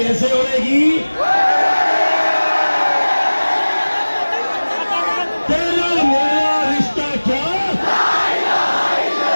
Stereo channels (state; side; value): inverted; both; correlation -1.00